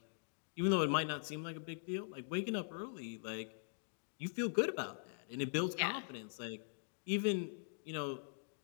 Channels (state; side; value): silent; right; digital silence